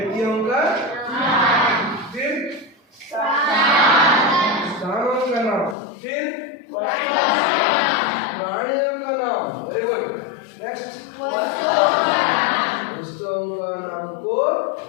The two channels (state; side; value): drops out; right; at 5.8 s